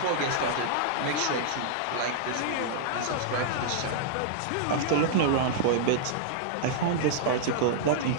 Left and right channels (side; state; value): both; different; correlation -0.01